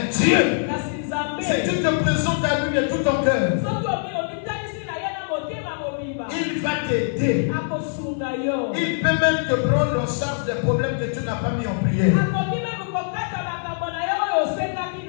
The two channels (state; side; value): silent; right; digital silence